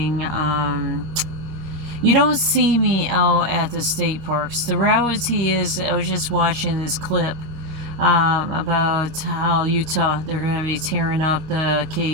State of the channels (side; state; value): left; late; 25 ms